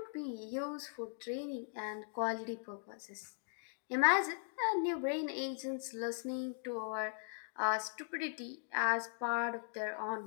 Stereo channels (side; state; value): right; silent; digital silence